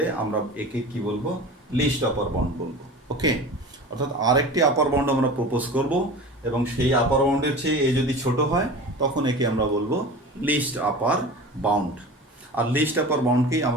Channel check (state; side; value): normal; both; correlation 0.34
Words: আমরা একে কি বলবো, লিস্ট আপার বাউন্ড বলবো। ওকে, অর্থাৎ আরেকটি আপার বাউন্ড আমরা প্রপোজ করব, এবং সেই আপার বাউন্ডের চেয়ে এ যদি ছোট হয় তখন একে আমরা বলবো লিস্ট আপার বাউন্ড। আর লিস্ট আপার বাউন্ডকেই